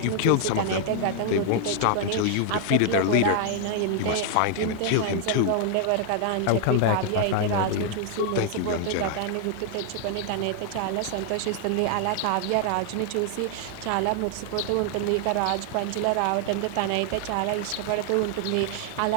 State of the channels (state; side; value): different; both; correlation 0.00